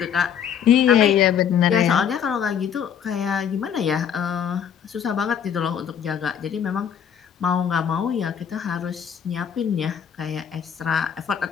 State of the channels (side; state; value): right; quieter; 8.3 dB